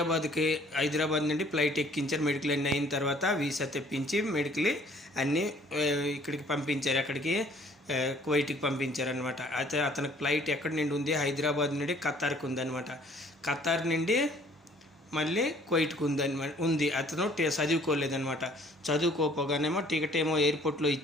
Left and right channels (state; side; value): normal; both; correlation 0.57